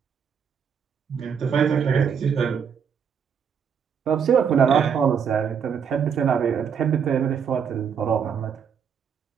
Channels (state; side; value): quieter; left; 7.2 dB